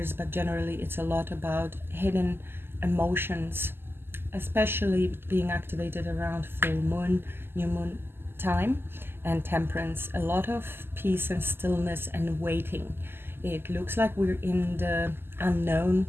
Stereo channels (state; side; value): late; left; 0.11 ms